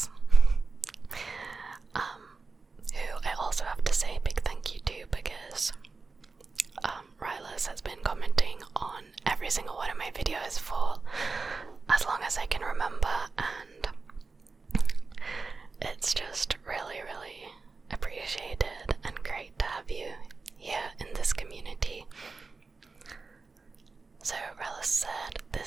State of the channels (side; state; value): left; quieter; 4.1 dB